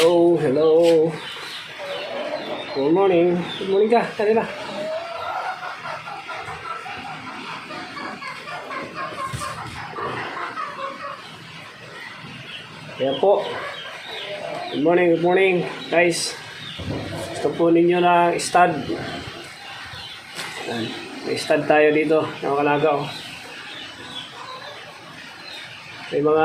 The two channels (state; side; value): identical; both; correlation 1.00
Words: Hello, hello. Good morning. Good morning ka, kanina. Kaya po. Good morning, guys. Gusto po ninyo ng stud. May stud tayo dito, ng Kalagaw. May